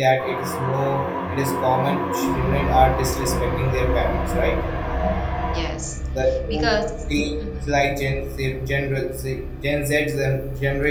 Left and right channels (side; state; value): both; identical; correlation 1.00